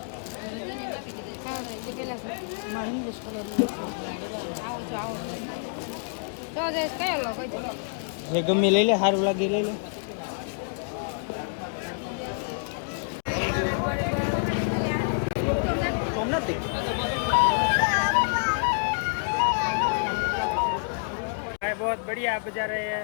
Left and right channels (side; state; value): right; silent; digital silence